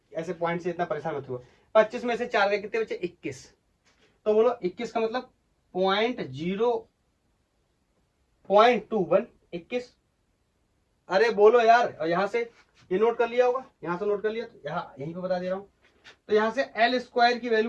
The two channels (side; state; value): both; identical; correlation 1.00